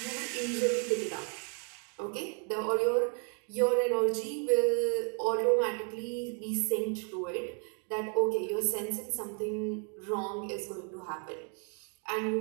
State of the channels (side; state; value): left; quieter; 39.7 dB